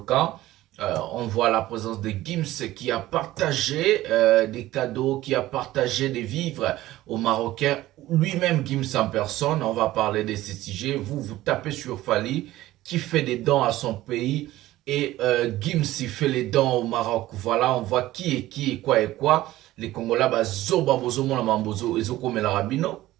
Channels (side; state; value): left; quieter; 16.0 dB